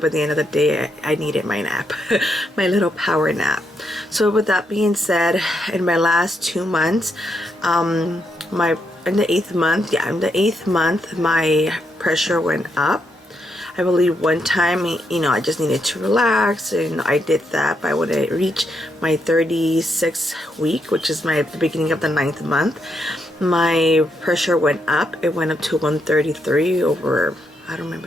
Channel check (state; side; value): normal; both; correlation 0.79